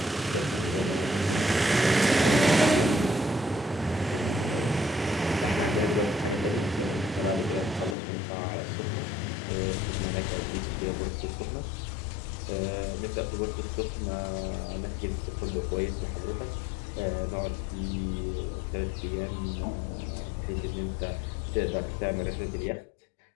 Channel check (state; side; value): drops out; right; at 8.0 s